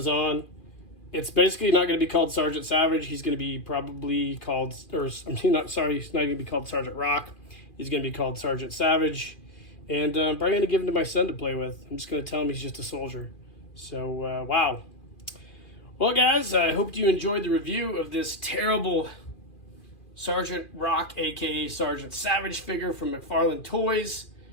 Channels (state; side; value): late; right; 2.4 ms